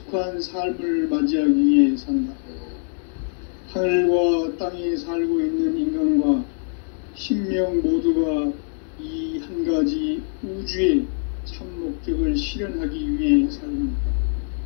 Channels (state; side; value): silent; right; digital silence